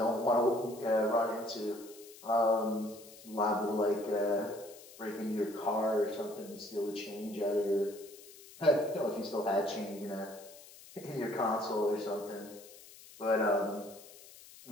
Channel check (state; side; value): noise; left; hiss, 19 dB below the sound